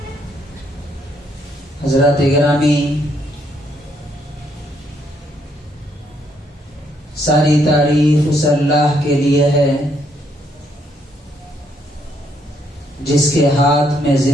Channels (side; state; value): both; normal; correlation 0.73